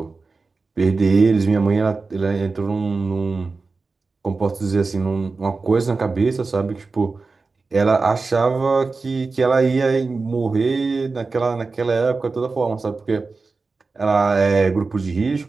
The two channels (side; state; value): left; quieter; 4.0 dB